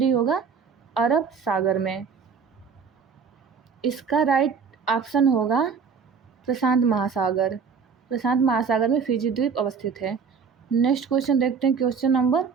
होगा अरब सागर में। इसका राइट ऑप्शन होगा प्रशांत महासागर। प्रशांत महासागर में फिजी द्वीप अवस्थित है। नेक्स्ट क्वेश्चन देखते हैं, क्वेश्चन नंबर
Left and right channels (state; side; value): quieter; left; 6.0 dB